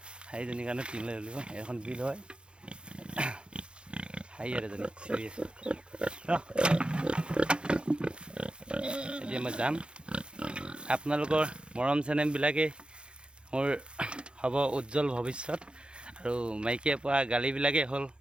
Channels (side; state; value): left; late; 0.054 ms